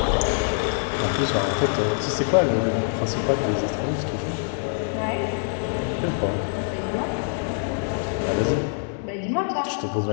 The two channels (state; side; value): silent; right; 62 dB below the other